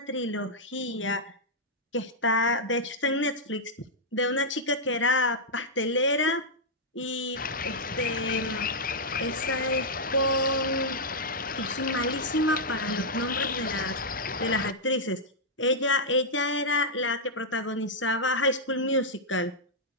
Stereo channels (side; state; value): both; normal; correlation -0.07